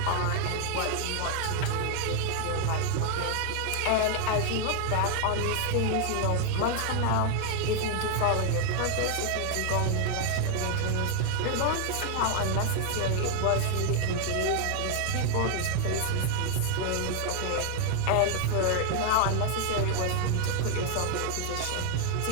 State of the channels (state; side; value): different; both; correlation 0.00